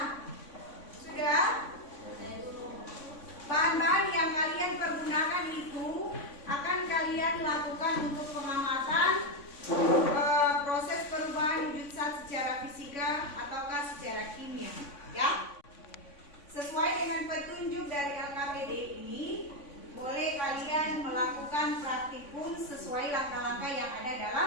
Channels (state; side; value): late; right; 3.5 ms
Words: sudah. Bahan-bahan yang kalian pergunakan itu akan kalian lakukan untuk pengamatan proses perubahan wujud zat secara fisika ataukah secara kimia, ya. Sesuai dengan petunjuk dari LKPD ini, boleh kalian melakukan praktikum sesuai langkah-langkah yang ada